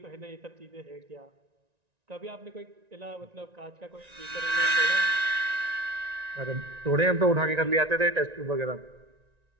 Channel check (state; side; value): late; left; 1.9 ms